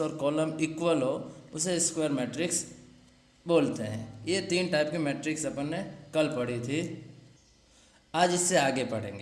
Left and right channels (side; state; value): both; identical; correlation 1.00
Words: और column equal हो उसे square matrix बोलते हैं। ये 3 टाइप के मैट्रिक्स अपन ने कल पढ़ी थी। आज इससे आगे